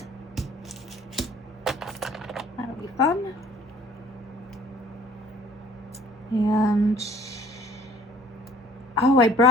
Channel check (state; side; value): normal; both; correlation 0.53